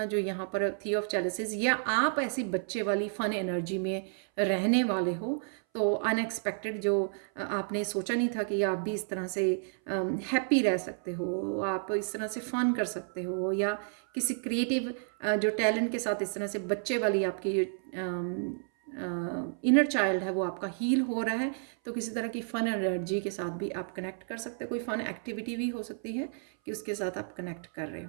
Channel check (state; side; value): silent; left; 57 dB below the other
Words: जो यहाँ पर थी ऑफ चैलिसेस, या आप ऐसी बच्चे वाली फन एनर्जी में रहने वाले हो। तो अनएक्सपेक्टेड जो आपने सोचा नहीं था कि आप भी इस तरह से हैप्पी रह सकते हो, आप इस तरह से फन कर सकते हो, या किसी क्रिएटिव जो टैलेंट के साथ इस तरह से बच्चे वाली आपकी इनर चाइल्ड है वो आपका हील हो रहा है। तो किसी तरह की फ़न एनर्जी के साथ भी आप कनेक्ट कर सकते हो, कोई फ़न एक्टिविटी भी हो सकती है कि उसके साथ आप कनेक्ट कर रहे